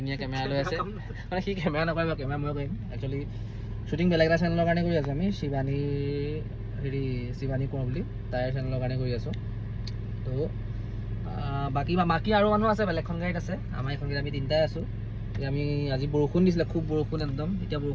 কেমেৰা লৈ আছে মানে কি কেমেৰা নকৰিব কেমেৰা মই কৰিম একচুয়ালি শুটিং বেলেগ এটা চেনেলৰ কাৰণে কৰি আছো আমি শিৱানী কোৱা বুলি তাইৰ চেনেলৰ কাৰণে কৰি আছো তো বাকি আৰু মানুহ আছে বেলেগখন গাড়ীত আছে আমাৰ এখন গাড়ীত আমি তিনটাই আছো আমি আজি বৰষুণ দিছিলে খুব বৰষুণ একদম এতিয়া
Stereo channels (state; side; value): identical; both; correlation 1.00